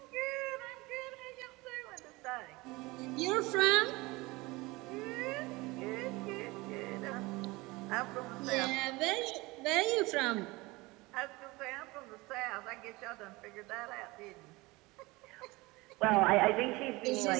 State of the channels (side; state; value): left; quieter; 22.5 dB